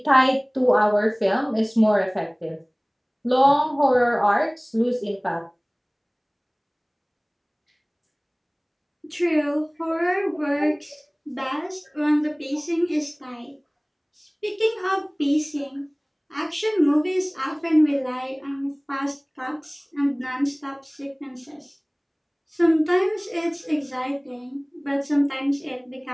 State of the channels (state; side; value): identical; both; correlation 1.00